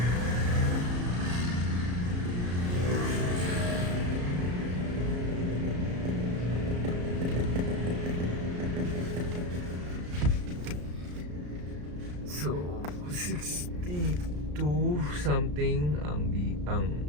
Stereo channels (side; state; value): left; late; 34 ms